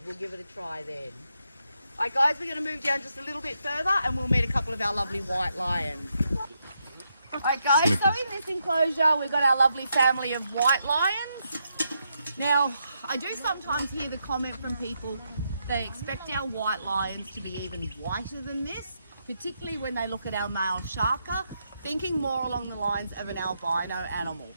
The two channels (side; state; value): both; inverted; correlation -0.81